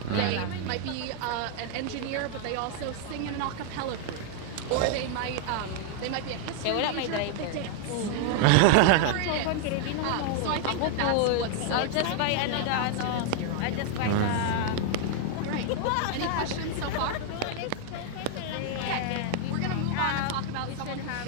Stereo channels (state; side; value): different; both; correlation 0.00